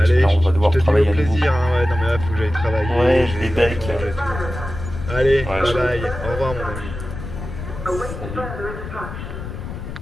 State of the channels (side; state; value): left; noise; rumble, 9 dB below the sound